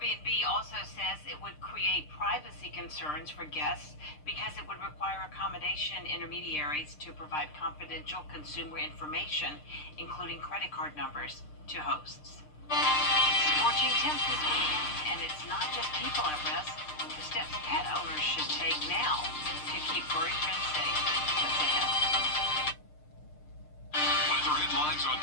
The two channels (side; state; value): right; late; 6.6 ms